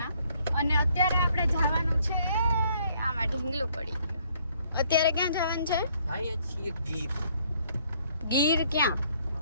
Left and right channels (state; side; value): inverted; both; correlation -0.65